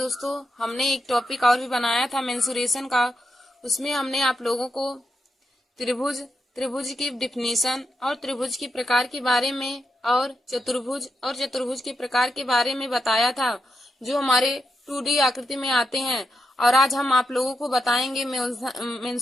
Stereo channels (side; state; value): both; normal; correlation 0.85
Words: हमने एक टॉपिक और भी बनाया था मेंसुरेशन का। उसमें हमने आप लोगों को त्रिभुज की डिफिनीशन और त्रिभुज के प्रकार के बारे में और चतुर्भुज के प्रकार के बारे में बताया था, जो हमारे 2D आकृति में आते हैं। और आज हम आप लोगों को बताएंगे